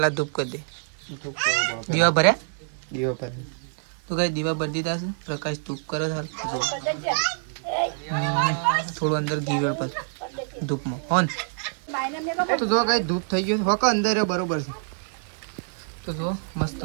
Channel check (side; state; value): left; silent; digital silence